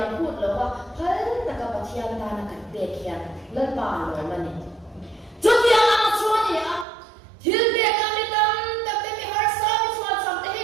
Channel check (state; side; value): drops out; left; at 6.9 s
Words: phut lo wa hal na ka pa thian na na kan pe khian la pa lo ma ni chu ti ang chuan ni a thil pe ka mi tam ta te mi har sa mi chuan sam te hi